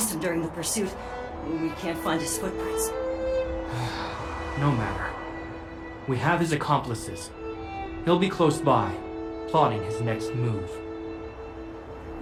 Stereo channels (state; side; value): identical; both; correlation 1.00